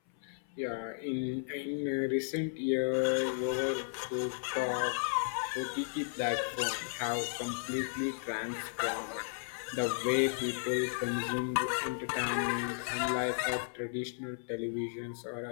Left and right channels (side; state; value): right; silent; 55 dB below the other